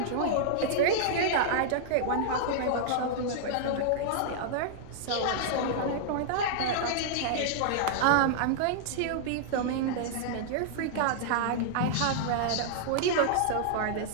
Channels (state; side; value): different; both; correlation -0.01